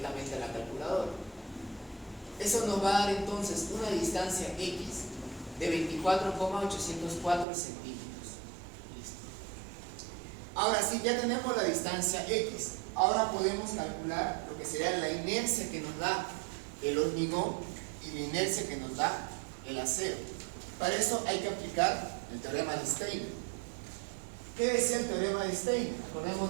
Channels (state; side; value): drops out; left; at 7.5 s